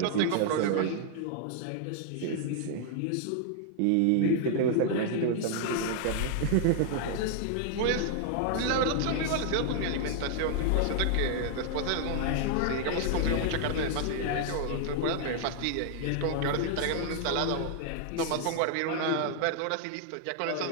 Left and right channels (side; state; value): both; different; correlation 0.00